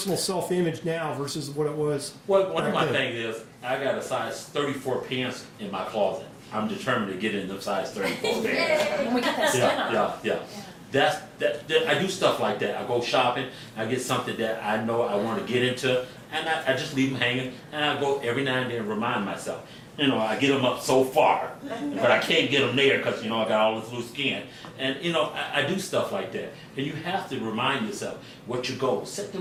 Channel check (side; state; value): both; identical; correlation 1.00